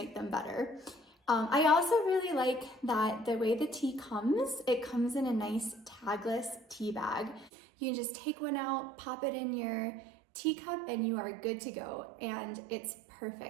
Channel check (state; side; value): drops out; left; at 7.5 s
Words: them better. I also really like that the way the tea comes, it comes in a nice tagless tea bag. You can just take one out, pop it in your teacup, and you are good to go. And it's